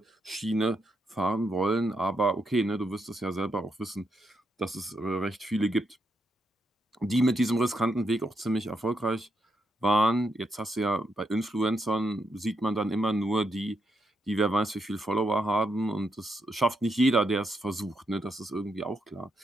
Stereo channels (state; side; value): normal; both; correlation 0.80